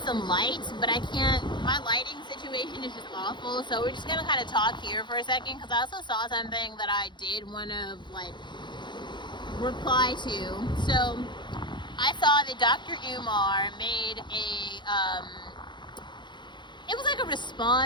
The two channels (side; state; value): right; late; 0.22 ms